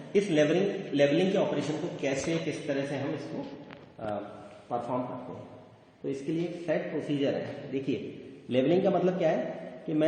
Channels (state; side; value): identical; both; correlation 1.00